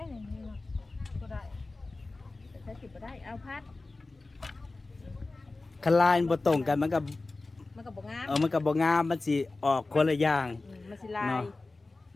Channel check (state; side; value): quieter; right; 3.3 dB